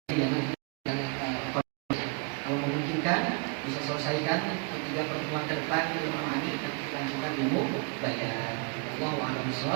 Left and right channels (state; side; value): quieter; left; 33.5 dB